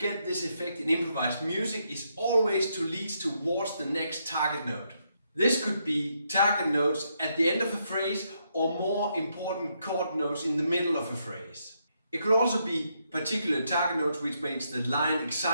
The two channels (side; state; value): both; inverted; correlation -0.78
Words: this effect in improvised music is always to lead towards the next target note. This could be target notes at the end of a phrase or more important chord notes in the middle of a phrase. It could also be particular target notes which makes the line